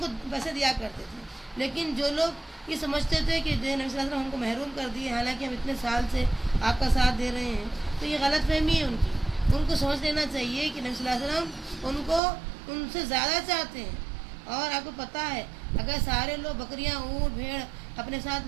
پیسے دیا کرتے تھے۔ لیکن جو لوگ یہ سمجھتے تھے کہ جو نبی صلی اللہ علیہ وسلم ہم کو محروم کر دیے حالانکہ ہم اتنے سال سے آپ کا ساتھ دے رہے ہیں، تو یہ غلط فہمی ہے ان کی۔ ان کو سمجھ لینا چاہیے کہ نبی صلی اللہ علیہ وسلم ان کو ان سے زیادہ چاہتے ہیں، اور آپ کو پتہ ہے اگر سارے لوگ بکریاں اونٹ بھیڑ اپنے ساتھ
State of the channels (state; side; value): drops out; left; at 12.2 s